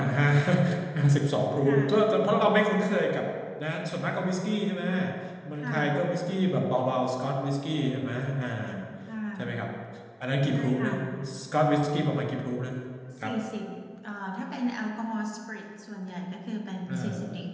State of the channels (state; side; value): identical; both; correlation 1.00